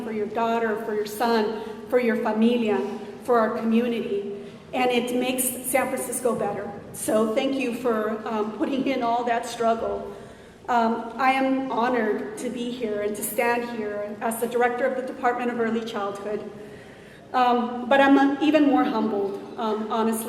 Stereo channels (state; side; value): identical; both; correlation 1.00